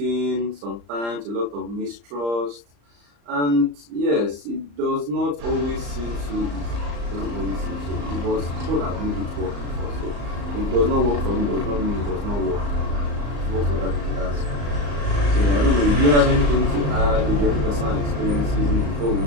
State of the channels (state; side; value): late; left; 34 ms